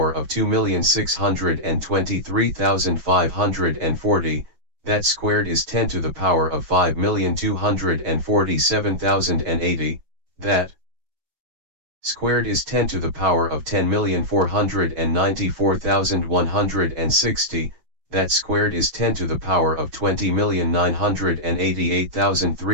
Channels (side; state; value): left; late; 6.1 ms